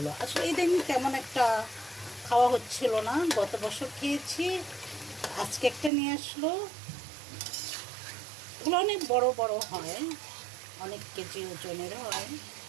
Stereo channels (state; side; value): drops out; left; at 5.9 s